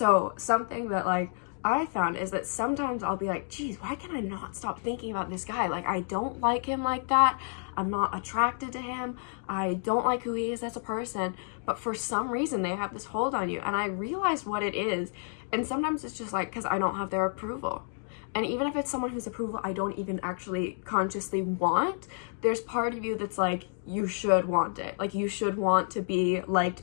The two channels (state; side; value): silent; right; 55 dB below the other